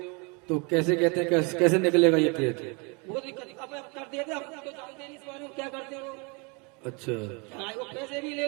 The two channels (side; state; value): left; quieter; 31.6 dB